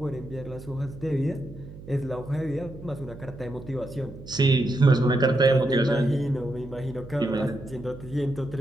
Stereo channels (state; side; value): noise; right; hum, 16 dB below the sound